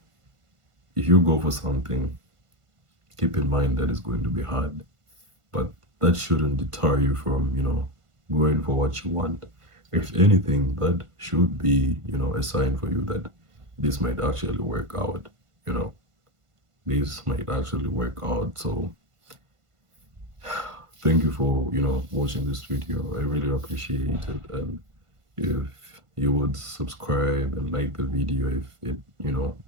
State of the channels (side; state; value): left; late; 1.5 ms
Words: if you go for something, keep in mind that it's going to be hard, but that shouldn't deter you from, going for what you want. If anything, that should be, a sign for you that this might actually work out, you know, this might actually work out. So thank you for, watching this video. I really appreciate it. And if you would subscribe and like the video if it,